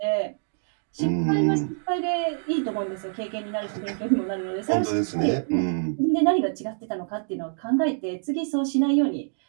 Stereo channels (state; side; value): silent; left; digital silence